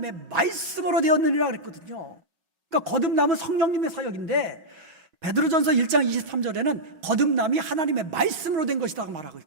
말씀으로 되었느니라 그랬거든요. 그러니까 거듭남은 성령님의 사역인데 베드로전서 1장 23절에는 거듭남이 하나님의 말씀으로 된 것이라고 말하고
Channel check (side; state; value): left; late; 5.5 ms